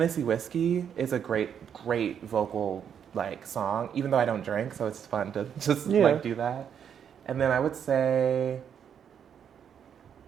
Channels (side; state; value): left; quieter; 8.2 dB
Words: Whiskey is a great vocal like song, even though I don't drink, so it's fun to just like do that. And then I would say